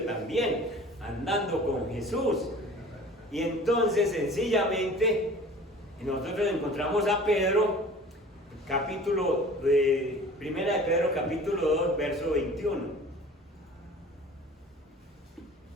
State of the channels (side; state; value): both; normal; correlation 0.44